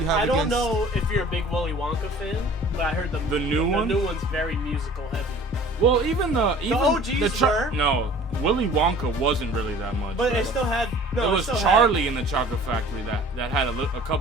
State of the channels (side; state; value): both; normal; correlation 0.47